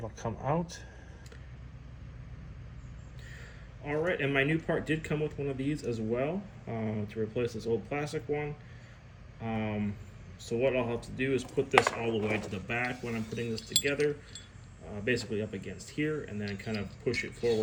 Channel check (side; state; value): both; identical; correlation 1.00